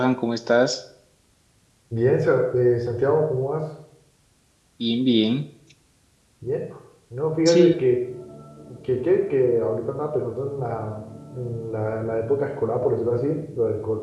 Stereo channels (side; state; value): both; identical; correlation 1.00